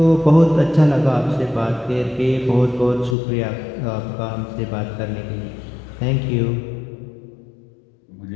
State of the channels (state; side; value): drops out; right; at 3.2 s